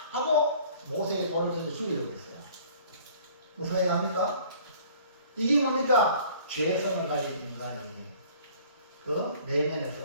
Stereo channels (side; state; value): both; inverted; correlation -0.52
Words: 하고 모세의 돌을 던져 죽이려고 했어요. 무슨 얘기합니까? 이게 뭡니까? 죄성을 가진 인간이 그 내면에서